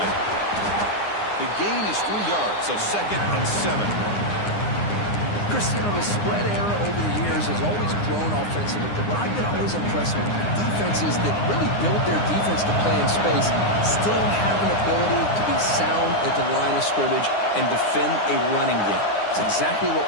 The gain is 3 yards, so second and 7. Chris, you know, the spread era over the years has always grown offensively, but what I've been always impressed with defenses that really build their defense to play in space still have an ability to be sound at the line of scrimmage and defend a running game. It's exactly what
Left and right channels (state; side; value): late; right; 9.7 ms